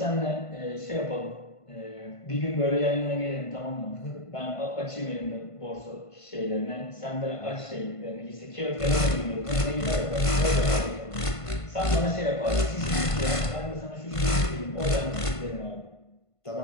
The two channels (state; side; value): late; right; 1.5 ms